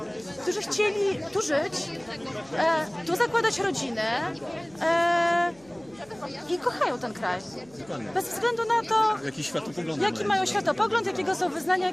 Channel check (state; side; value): noise; right; hum, 27 dB below the sound